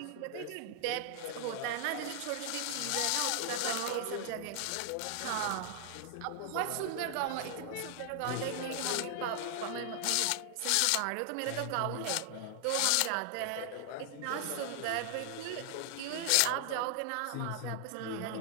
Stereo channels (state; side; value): different; both; correlation 0.00